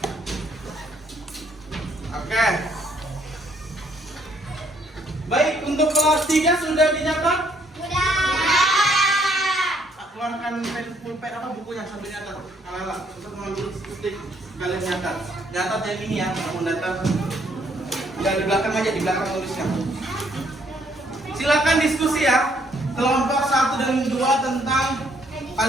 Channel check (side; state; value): both; normal; correlation 0.68